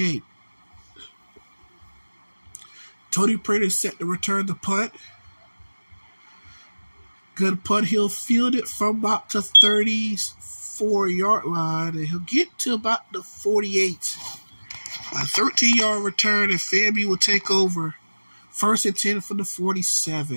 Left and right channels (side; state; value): both; inverted; correlation -1.00